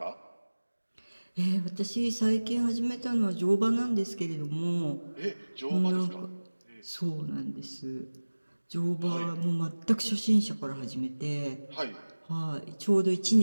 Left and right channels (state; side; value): inverted; both; correlation -1.00